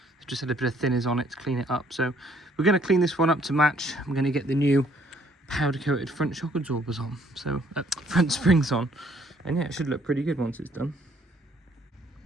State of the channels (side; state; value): both; normal; correlation 0.64